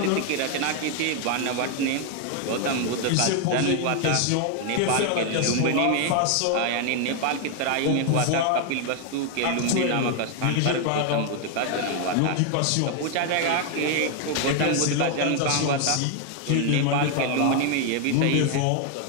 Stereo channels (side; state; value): both; different; correlation 0.01